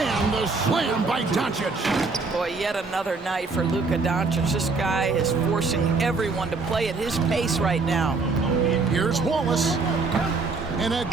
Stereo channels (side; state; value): left; quieter; 4.1 dB